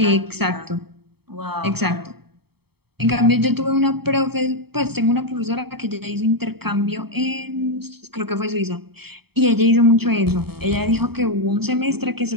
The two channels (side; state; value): left; late; 0.96 ms